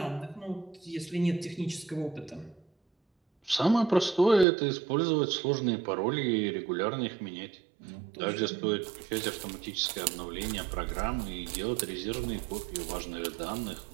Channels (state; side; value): drops out; left; at 4.5 s